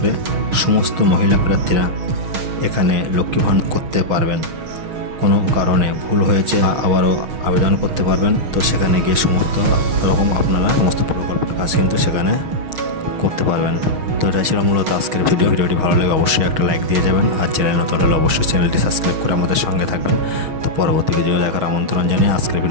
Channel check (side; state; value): left; late; 6.4 ms